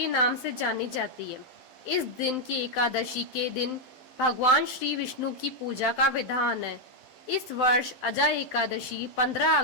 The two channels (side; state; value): right; late; 12 ms